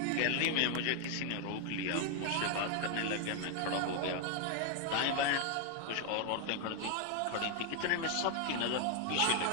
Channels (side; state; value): both; different; correlation 0.00